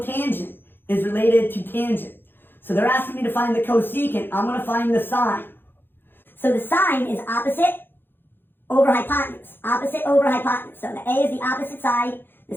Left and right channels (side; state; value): right; late; 0.10 ms